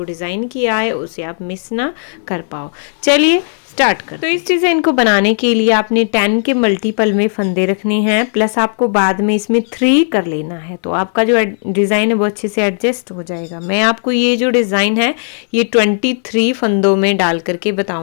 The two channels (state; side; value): silent; right; digital silence